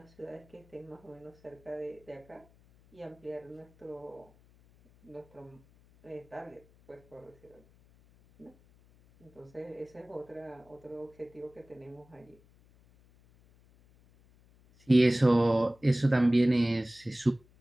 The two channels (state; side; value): noise; left; hum, 28 dB below the sound